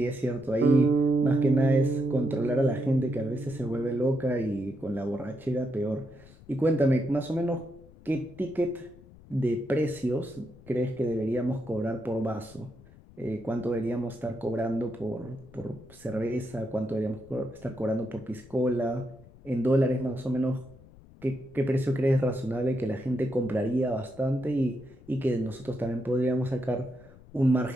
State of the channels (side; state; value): left; noise; rumble, 22 dB below the sound